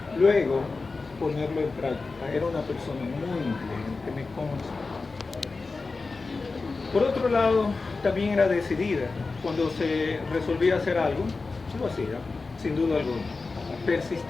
luego ponerlo en práctica. Era una persona muy inteligente, me consta. Por otro lado, también era decidida. Cuando se resolvía hacer algo, lo hacía, sin duda alguna.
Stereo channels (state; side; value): quieter; right; 4.0 dB